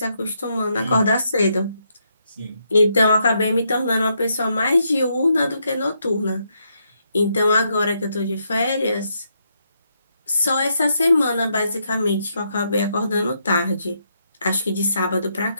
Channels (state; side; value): inverted; both; correlation -0.78